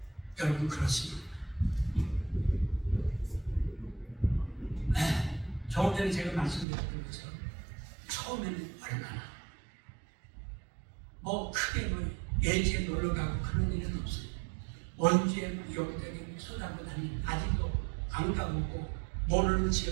여러분 그렇습니다. 조금 전에 제가 말씀드렸던 것처럼 처음에는 얼마나 크게 예지에 놀러 가고 그런 일은 없어요. 원주에 여기저기 쏟아고 다니는 아직도 안 가보고 모르는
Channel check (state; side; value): drops out; left; at 6.7 s